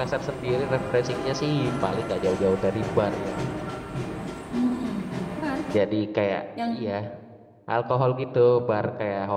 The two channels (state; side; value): identical; both; correlation 1.00